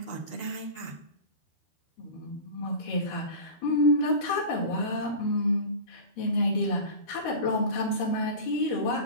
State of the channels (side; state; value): right; late; 12 ms